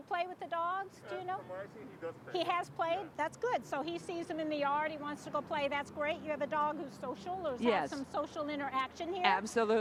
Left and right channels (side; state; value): both; identical; correlation 1.00